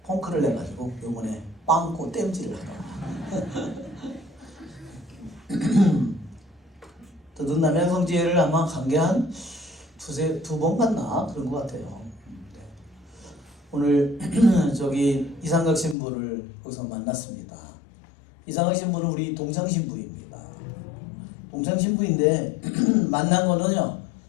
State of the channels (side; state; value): right; drops out; at 16.0 s